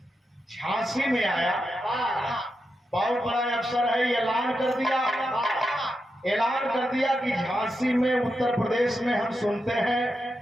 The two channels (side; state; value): both; normal; correlation 0.87